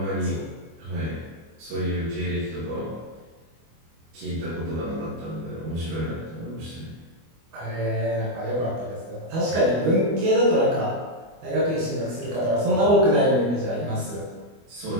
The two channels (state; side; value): late; left; 25 ms